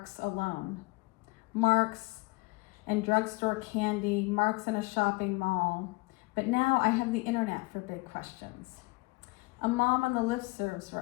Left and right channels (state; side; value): quieter; right; 24.9 dB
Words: alone. Marks and drugstore candy, marks in a shopping mall. But now I have the internet for big questions. A mom on the